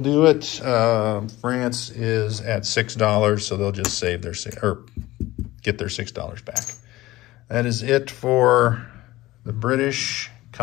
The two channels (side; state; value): right; quieter; 17.5 dB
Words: it. France is at $6, so they'll just save their get their $6 back. That is it for the British,